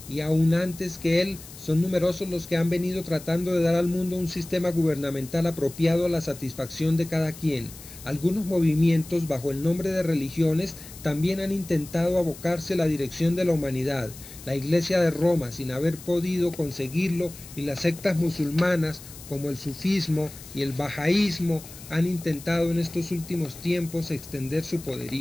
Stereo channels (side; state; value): left; noise; hiss, 17 dB below the sound